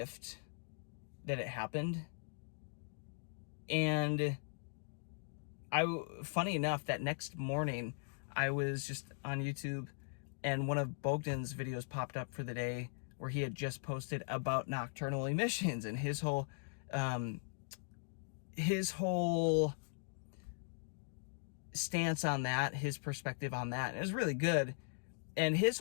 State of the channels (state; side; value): silent; right; digital silence